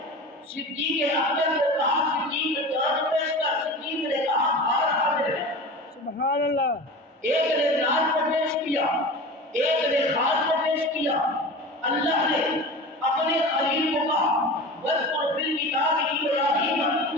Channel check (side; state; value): both; normal; correlation 0.33